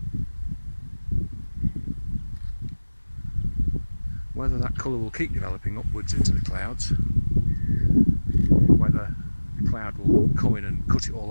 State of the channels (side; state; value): both; inverted; correlation -1.00